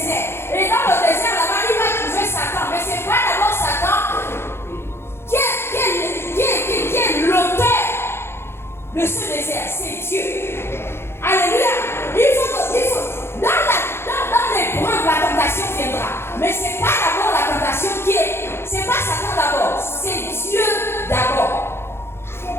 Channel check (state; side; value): late; right; 0.12 ms